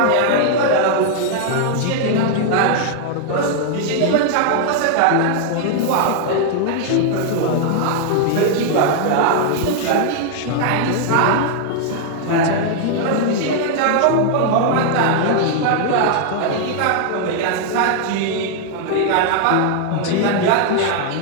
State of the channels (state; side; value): different; both; correlation 0.00